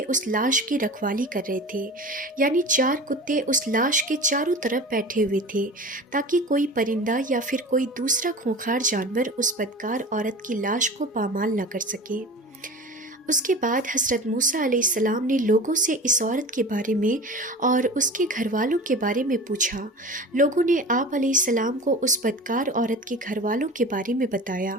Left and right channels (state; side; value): normal; both; correlation 0.35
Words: उस लाश की रखवाली कर रहे थे, यानी 4 कुत्ते उस लाश के चारों तरफ बैठे हुए थे ताकि कोई परिंदा या फिर कोई दूसरा खूंखार जानवर उस बदकार औरत की लाश को पामाल न कर सके। उसके बाद हज़रत मूसा अलैहिस्सलाम ने लोगों से इस औरत के बारे में और उसके घर वालों के बारे में पूछा। लोगों ने आप अलैहिस्सलाम को उस बदकार औरत के घर वालों के बारे में